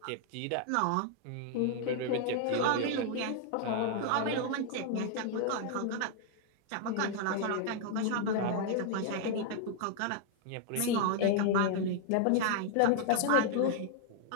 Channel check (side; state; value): both; different; correlation 0.00